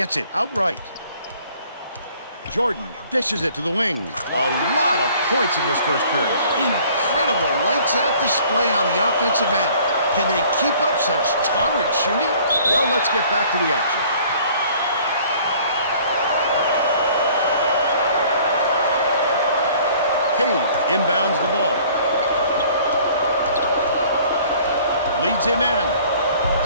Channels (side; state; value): both; inverted; correlation -0.54